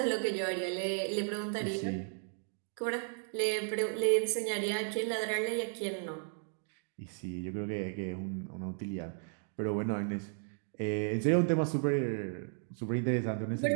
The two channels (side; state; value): left; silent; 55 dB below the other